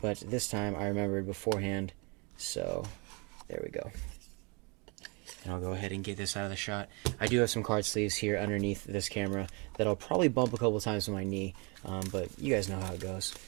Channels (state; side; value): quieter; left; 30.7 dB